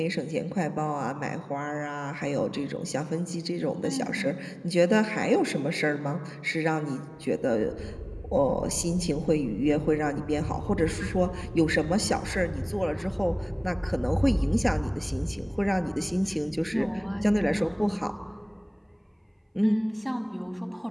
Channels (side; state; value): both; identical; correlation 1.00